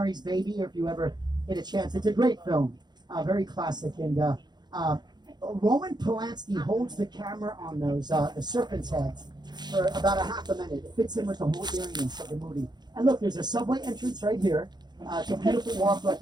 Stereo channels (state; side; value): late; left; 0.21 ms